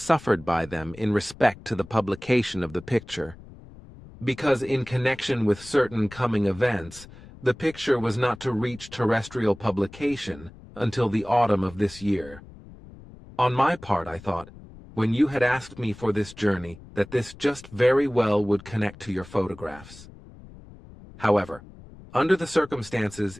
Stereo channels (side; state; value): left; noise; rumble, 19 dB below the sound